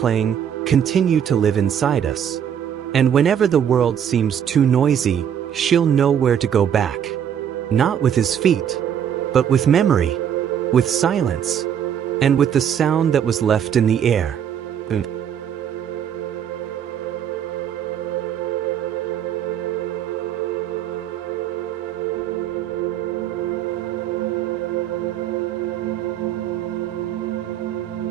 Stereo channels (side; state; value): left; quieter; 8.9 dB